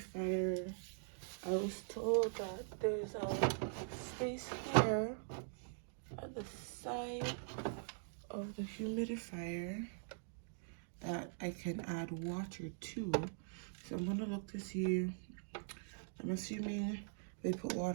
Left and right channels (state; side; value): silent; left; digital silence